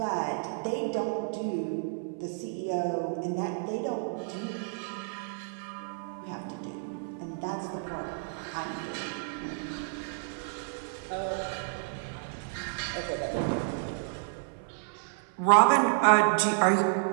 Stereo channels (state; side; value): silent; left; 57 dB below the other